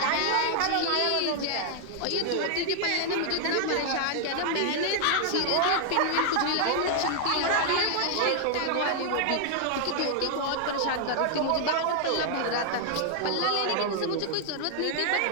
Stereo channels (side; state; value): both; different; correlation 0.00